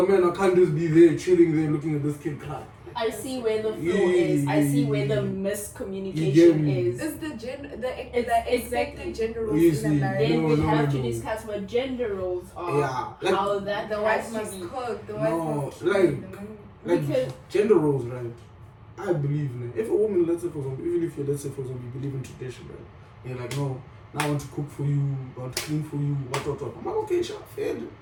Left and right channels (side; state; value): both; identical; correlation 1.00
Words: man, I can't just be there, chilling there, looking at this kid cry. I see where the flaw is. I see where the miscommunication is. Is the It's expected gender roles Easy. in a marriage? Then we have to no. discuss what gender roles are. Yeah, like- how that The has wife to must be. cook. The wife No, must clean. like- the man- Like Because- gender roles, right? I believe in it. If a woman, let's say for example, even if you let's say for example you believe in tradition, right? You're like, no, now I want to cook for you, I want to clean for you, what. I'm like, okay, sure, fair,